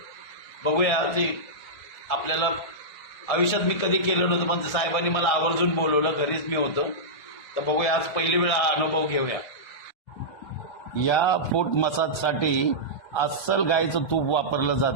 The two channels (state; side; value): late; right; 1.7 ms